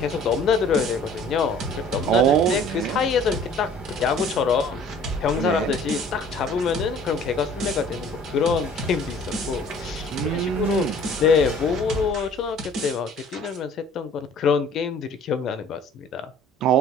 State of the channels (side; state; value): both; normal; correlation 0.51